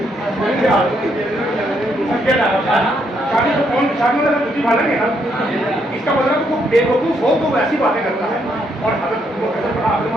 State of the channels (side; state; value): both; normal; correlation 0.74